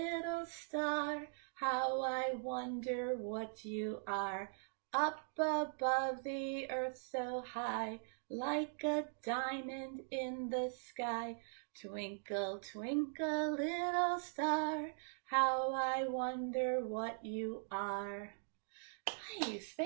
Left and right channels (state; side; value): silent; left; digital silence